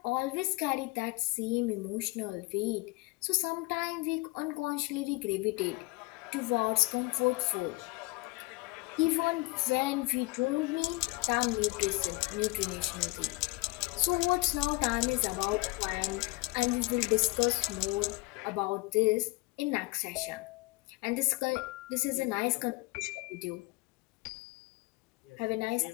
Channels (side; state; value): right; quieter; 23.5 dB